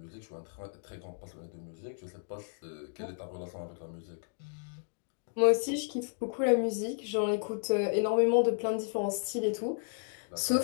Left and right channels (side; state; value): right; silent; digital silence